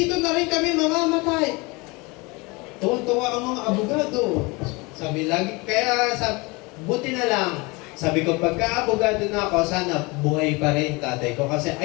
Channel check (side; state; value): right; quieter; 25.9 dB